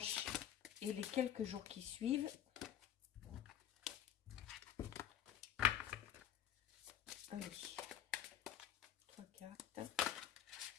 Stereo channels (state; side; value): quieter; right; 10.6 dB